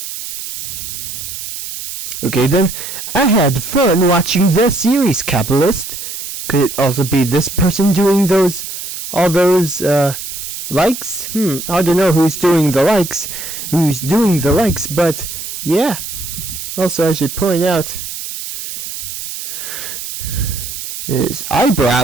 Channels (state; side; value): noise; right; hiss, 7 dB below the sound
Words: Okay then, I had fun watching the series, Capitalist. Could it also be this person doing all those likes? Hard to know who's doing the likes, but yeah. Also, I should point out his